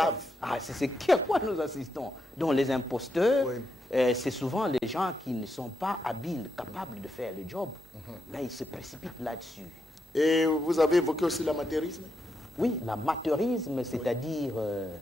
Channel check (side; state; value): both; normal; correlation 0.82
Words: Ah, c'est à quoi nous assistons. Donc les imposteurs, Oui. c'est souvent les gens qui ne sont pas habiles, capables de faire le job. Mais ils se précipitent là-dessus. Et vous avez évoqué aussi l'amateurisme? Oui, l'amateurisme, c'est-à-dire,